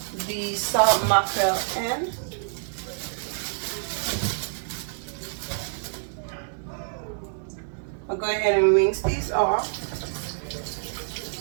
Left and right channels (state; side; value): silent; left; 60 dB below the other